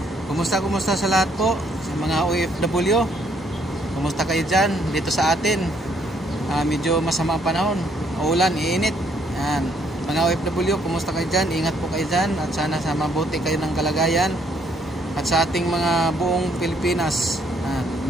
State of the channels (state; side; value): normal; both; correlation 0.68